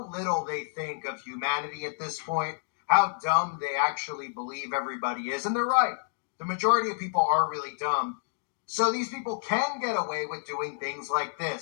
little they think of humanity at this point, how dumb they actually believe everybody is. And they're right. The majority of people are really dumb. So these people can get away with doing things like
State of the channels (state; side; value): silent; right; digital silence